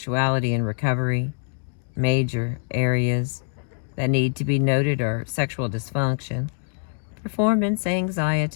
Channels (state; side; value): silent; right; 60 dB below the other